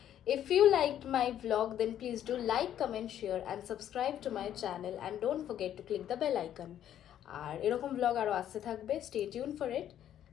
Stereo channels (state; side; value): quieter; right; 10.8 dB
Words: If you liked my vlog, then please do like, comment, share and subscribe to my channel and don't forget to click the bell icon. আর এরকম vlog আরও আসতে থাকবে, stay tuned for it.